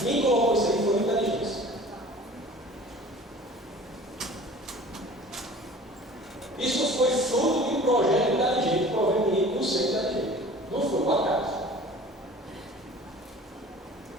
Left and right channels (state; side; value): normal; both; correlation 0.44